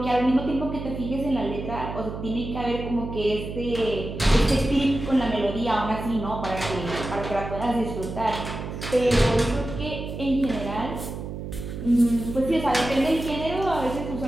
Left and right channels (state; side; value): noise; right; hum, 8 dB below the sound